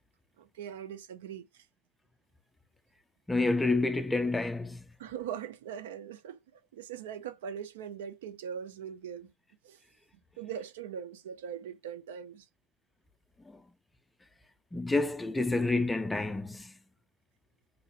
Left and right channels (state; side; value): normal; both; correlation 0.77